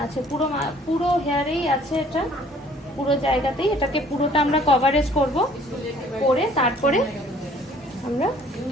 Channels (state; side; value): normal; both; correlation 0.56